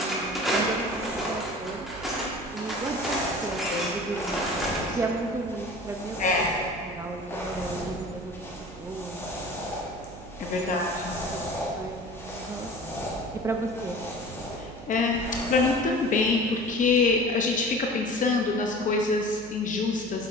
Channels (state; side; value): noise; right; hum, 16 dB below the sound